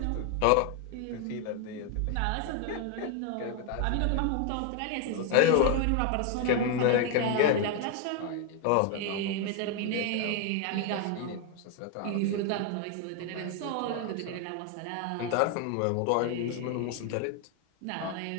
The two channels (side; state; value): both; different; correlation 0.01